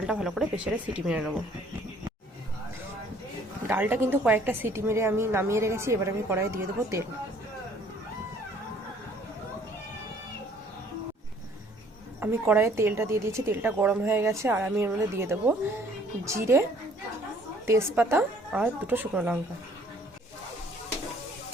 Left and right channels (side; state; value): both; normal; correlation 0.58